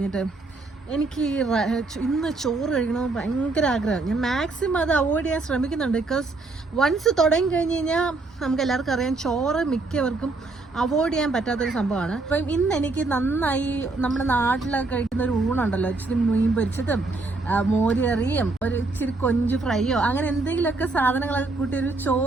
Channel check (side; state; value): left; quieter; 3.5 dB